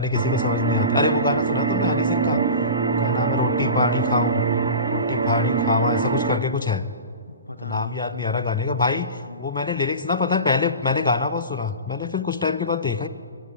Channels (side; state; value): both; inverted; correlation -0.32